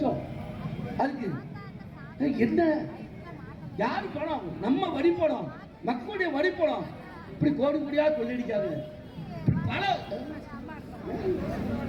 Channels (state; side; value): identical; both; correlation 1.00